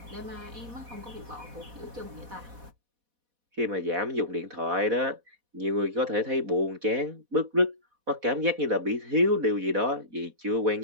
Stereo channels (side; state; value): left; late; 4.1 ms